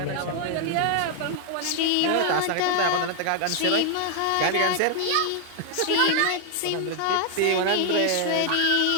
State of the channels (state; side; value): different; both; correlation 0.00